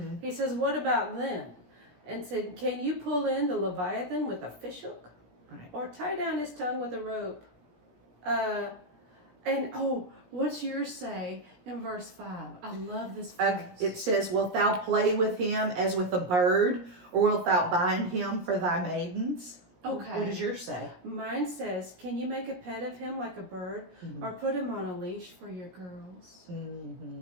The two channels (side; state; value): left; late; 17 ms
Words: He says, what about them? And said, can you pull in the Leviathan with a fishhook? Right. Or tie down his tongue with a rope? What's yours say in verse 5? I love this verse. It says, wilt thou play with him as with a bird, or wilt thou bind him for thy maidens? Okay. What does yours say? Mine says, can you make a pet of him like a bird, or put him on a leash for your girls?